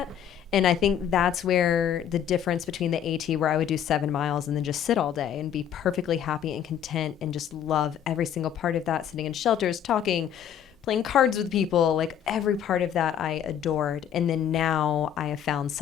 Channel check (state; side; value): quieter; right; 9.4 dB